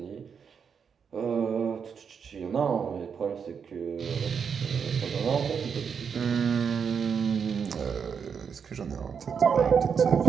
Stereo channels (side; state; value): left; quieter; 6.7 dB